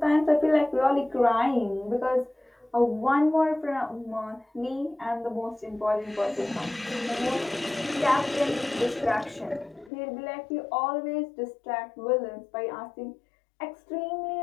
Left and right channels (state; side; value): drops out; right; at 9.9 s